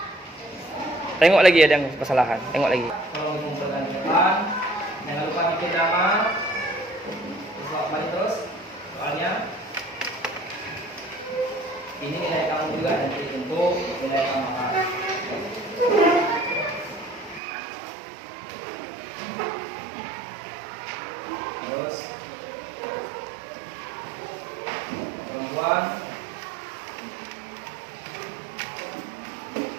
Tengok lagi ada yang kesalahan. Tengok lagi. Tolong kumpulkan di depan. Jangan lupa bikin nama. Balik terus. Soalnya ini nilai kamu juga nanti untuk nilai tambahan. Terus perempuan.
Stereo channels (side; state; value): left; drops out; at 17.4 s